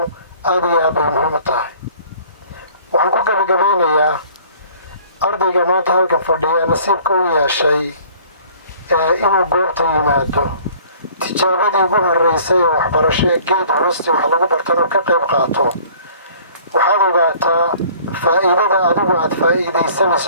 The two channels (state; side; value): inverted; both; correlation -0.51